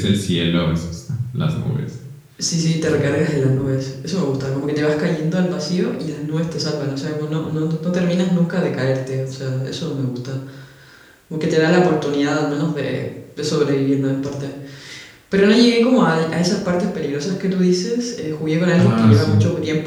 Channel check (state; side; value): identical; both; correlation 1.00